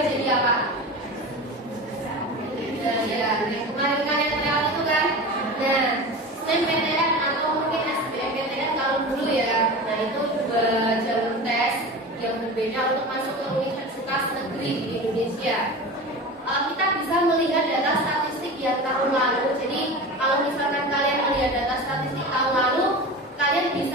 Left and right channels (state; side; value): normal; both; correlation 0.30